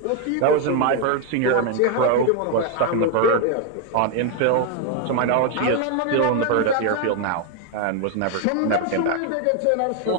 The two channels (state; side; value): different; both; correlation 0.01